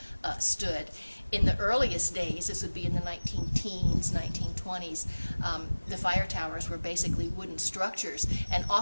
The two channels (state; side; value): inverted; both; correlation -1.00